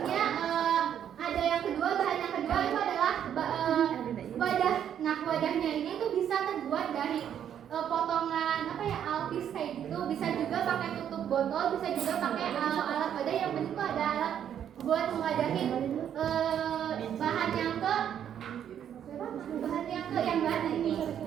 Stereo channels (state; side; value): quieter; left; 9.4 dB